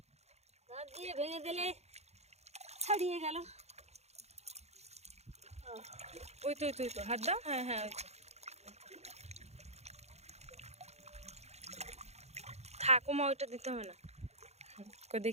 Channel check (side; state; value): left; late; 0.31 ms